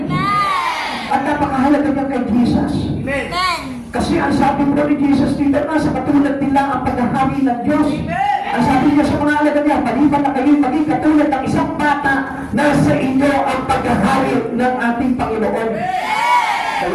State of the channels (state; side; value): identical; both; correlation 1.00